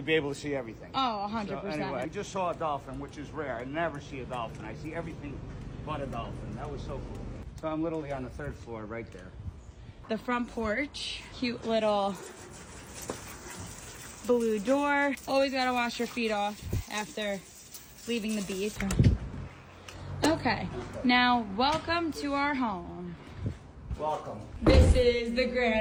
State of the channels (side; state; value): both; identical; correlation 1.00